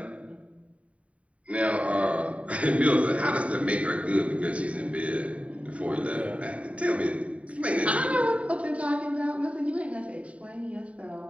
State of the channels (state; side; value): late; left; 0.066 ms